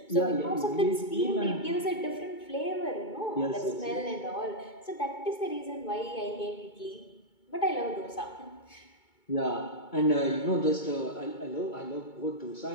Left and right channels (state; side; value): late; right; 2.2 ms